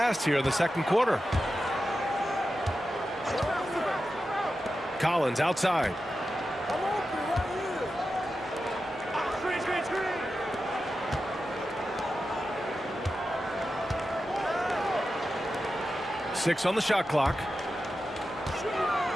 here in the second quarter. Collins outside. Six on the shot clock.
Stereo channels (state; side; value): normal; both; correlation 0.91